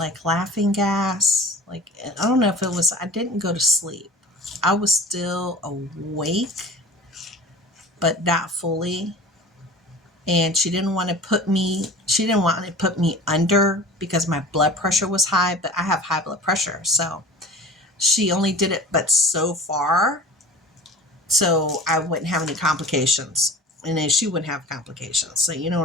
laughing gas? Like, I don't know if it was, I didn't go to sleep. I was still awake, but not fully. And she didn't want to put me under because my blood pressure was high, but I have high blood pressure. So she only did it, but so far, so I wouldn't have any complications. And then she wouldn't have complications. So you know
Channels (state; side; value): normal; both; correlation 0.40